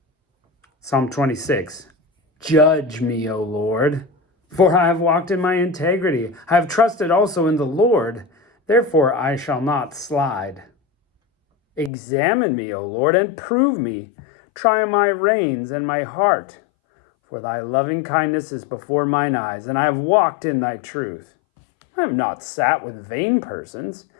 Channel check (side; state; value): right; drops out; at 11.9 s